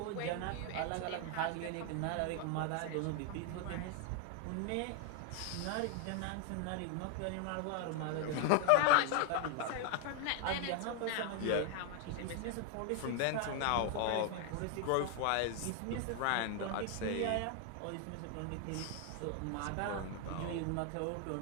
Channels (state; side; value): different; both; correlation 0.00